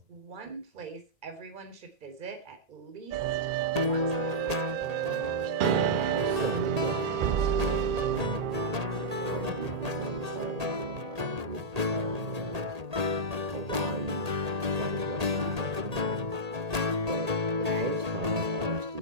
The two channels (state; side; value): late; left; 1.8 ms